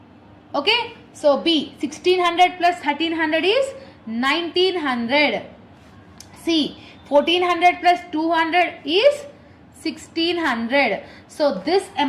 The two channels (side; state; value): both; identical; correlation 1.00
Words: Okay. So B 1600 plus 1300 is 1900. C 1400 plus 200 is 1600. So this